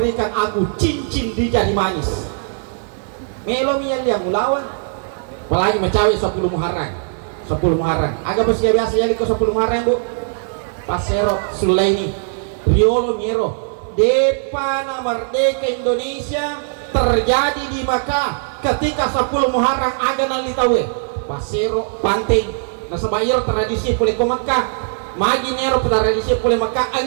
aku cincin di jari manis. Melo mian yang ulawan, apalagi mencawi 10 Muharram. Agak bersih biasa ya liko 10 Muharram bu. Pasero Sulaini Riolo Miero Depana Merdeka Indonesia terjadi di Makkah ketika 10 Muharram aga nalitawe Pasero Panting nasabayar tradisi pulih ke Makkah magi Nero tradisi pulih Makkah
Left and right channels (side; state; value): left; silent; digital silence